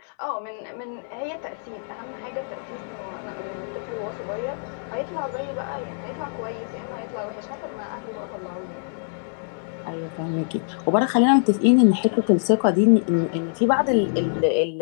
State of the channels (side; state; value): right; silent; 62 dB below the other